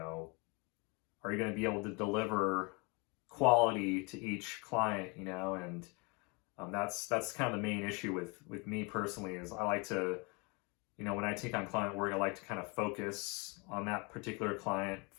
you going to be able to deliver quality to each client, and that's kind of the main issue with me personally, is I like to, when I take on client work, I like to kind of focus on that particular client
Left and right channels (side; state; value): right; quieter; 29.9 dB